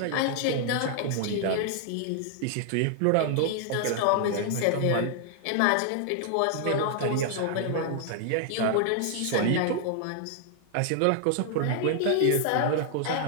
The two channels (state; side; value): different; both; correlation 0.00